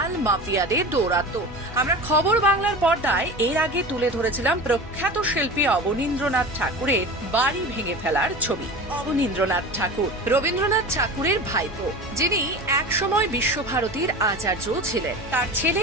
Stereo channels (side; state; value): both; normal; correlation 0.32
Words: মাফিয়াদের দৌরাত্ম্য। আমরা খবর বাংলার পর্দায় এর আগে তুলে ধরেছিলাম প্রখ্যাত শিল্পী অবনীন্দ্রনাথ ঠাকুরের বাড়ি ভেঙে ফেলার ছবি। অবনীন্দ্রনাথ ঠাকুর রবীন্দ্রনাথ ঠাকুরের ভাইপো, যিনি একসময় বিশ্বভারতীর আচার্য ছিলেন। তার ছেলে